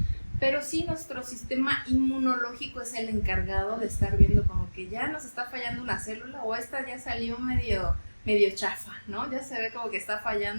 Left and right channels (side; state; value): both; inverted; correlation -1.00